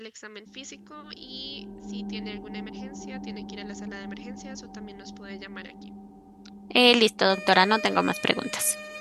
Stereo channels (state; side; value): identical; both; correlation 1.00